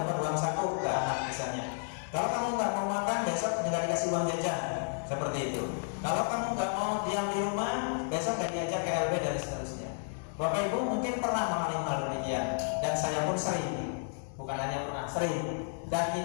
uang saku ke anak misalnya. Kalau kamu nggak mau makan, besok nggak dikasih uang jajan. Seperti itu. Kalau kamu nggak mau diam di rumah, besok nggak diajak ke LB dan seterusnya. Bapak Ibu mungkin pernah mengalami hal demikian, dan saya pun sering, bukan hanya pernah, sering. Dan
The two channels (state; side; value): silent; right; digital silence